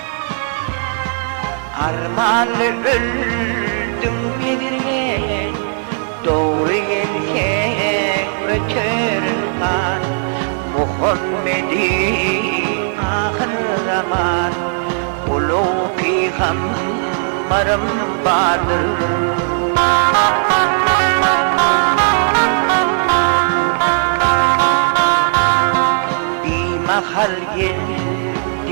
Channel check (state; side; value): silent; left; digital silence